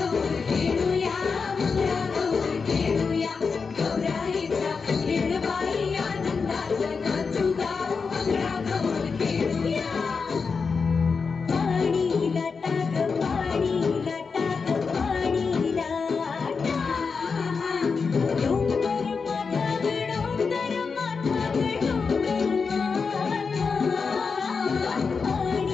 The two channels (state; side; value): quieter; right; 5.1 dB